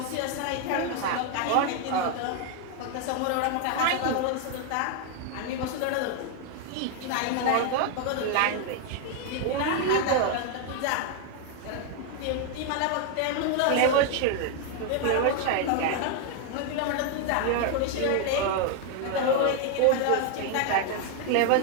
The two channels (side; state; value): both; different; correlation 0.00